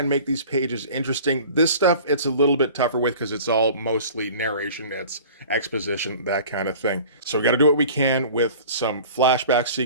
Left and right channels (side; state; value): both; inverted; correlation -0.43